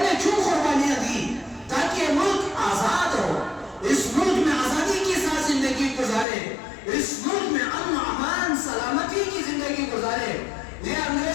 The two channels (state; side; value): drops out; right; at 6.2 s